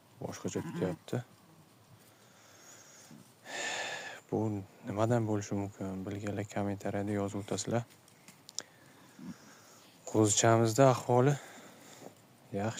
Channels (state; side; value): identical; both; correlation 1.00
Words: boshqacha tutyapti. Bu nimadan bo'lishi mumkin? Bilganlar kommentariyada yozib o'tasizlar. Qo'zichamizda ahvoli